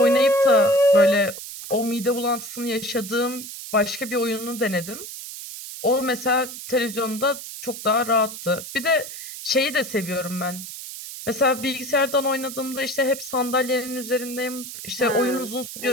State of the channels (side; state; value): right; noise; hiss, 10 dB below the sound